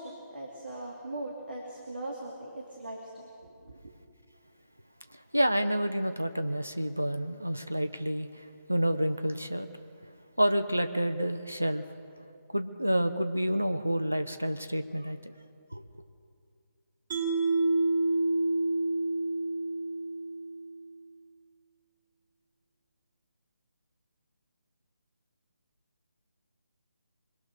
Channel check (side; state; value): both; inverted; correlation -0.94